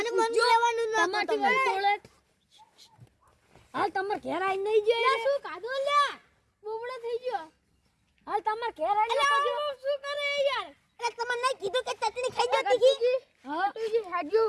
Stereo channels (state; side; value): identical; both; correlation 1.00